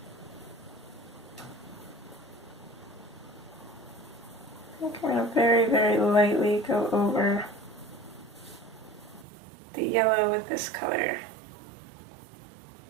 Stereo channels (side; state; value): left; drops out; at 9.2 s